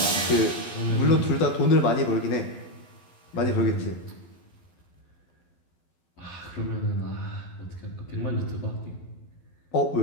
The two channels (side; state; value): right; late; 12 ms